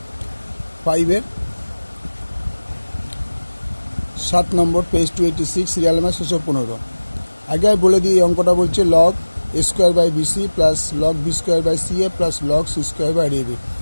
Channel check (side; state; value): both; inverted; correlation -1.00